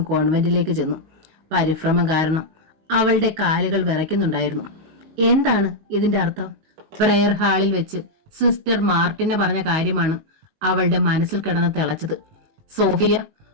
കോൺവെന്റിലേക്ക് ചെന്നു. പരിഭ്രമം കാരണം അവളുടെ കാലുകൾ വിറയ്ക്കുന്നുണ്ടായിരുന്നു. എന്താണ് ഇതിന്റെ അർത്ഥം? പ്രയർ ഹാളിൽ വെച്ച് സിസ്റ്റർ മാർട്ടിനെ പറഞ്ഞ കാര്യമാണ് അവളുടെ മനസ്സിൽ കിടന്ന് തിളച്ചത്. സോഫിയ,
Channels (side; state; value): left; late; 19 ms